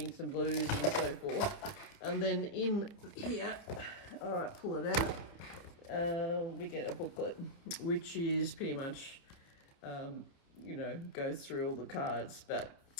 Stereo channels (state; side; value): late; right; 29 ms